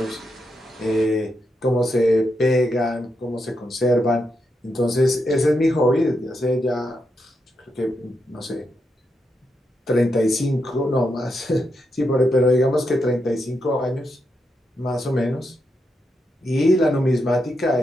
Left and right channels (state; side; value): normal; both; correlation 0.83